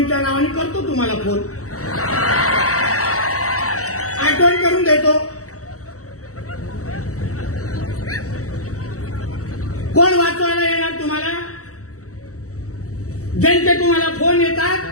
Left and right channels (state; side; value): late; right; 0.65 ms